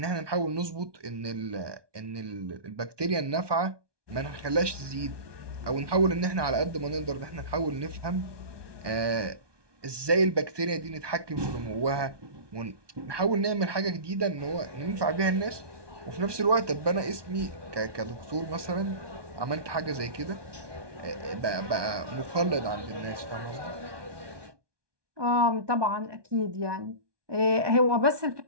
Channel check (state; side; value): late; left; 1.2 ms